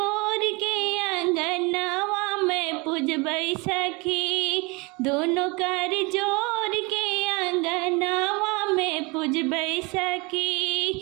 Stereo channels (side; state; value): left; quieter; 27.4 dB